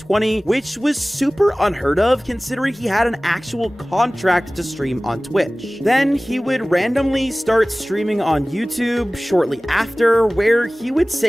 which was super unheard of considering he had an actual contract to stream on Twitch. Then he would randomly start streaming on YouTube shortly after, where he would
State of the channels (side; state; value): both; normal; correlation 0.98